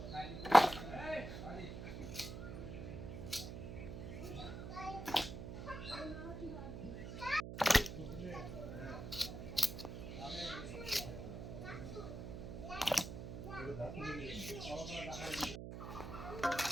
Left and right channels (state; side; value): noise; right; hum, 7 dB below the sound